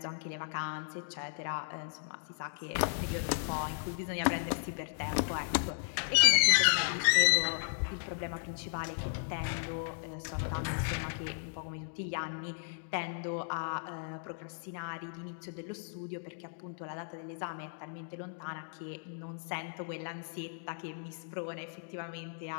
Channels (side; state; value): right; silent; digital silence